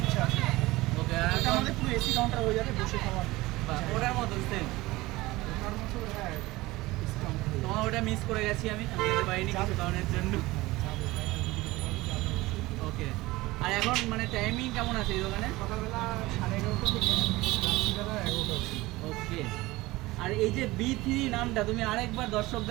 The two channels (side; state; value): left; quieter; 19.7 dB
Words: ইচ্ছা আছে। ওকে। ওটা আমাদের পুরো এসি কাউন্টার হয়ে যাবে, বসে খাওয়ার। ওটার মতন সেম। ওটার মতো হ্যাঁ এসি কাউন্টার হয়ে তোমার ওটা মিস করে গেছি আমি যেতে পারিনি কিছু কারণের জন্য। যাবে। ওকে। আর এখন মানে টাইমিং কেমন আছে এই দোকানে? সকালবেলা 11:30 থেকে রাত্রিবেলা 11টা অবধি। ওকে। আর এই যে B3 নামটা তুমি আরেকবার